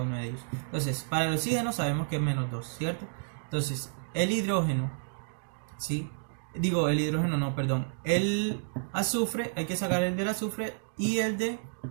de ellos. Entonces, para el oxígeno sabemos que es -2, ¿cierto? Entonces, el hidrógeno, ¿sí? Digo, el hidrógeno no, perdón. El azufre, hay que sacar el del azufre y el del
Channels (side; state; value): left; silent; digital silence